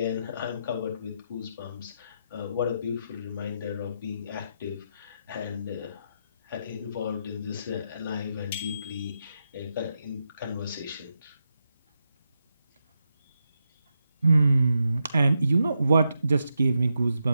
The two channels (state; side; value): inverted; both; correlation -0.84